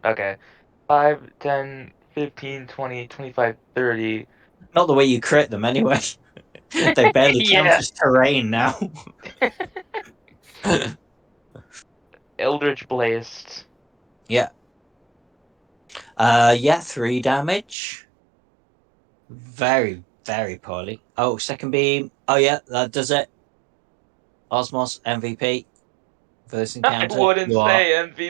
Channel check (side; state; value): left; drops out; at 17.8 s